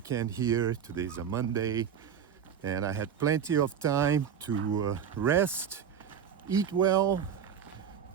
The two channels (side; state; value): left; quieter; 8.1 dB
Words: here. Today's a Monday, and I had plenty of time to rest, eat well.